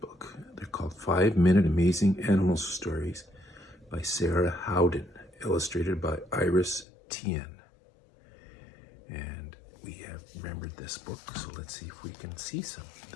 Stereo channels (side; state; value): right; drops out; at 6.9 s